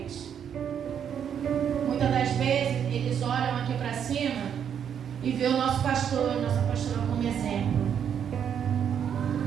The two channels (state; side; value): quieter; left; 8.4 dB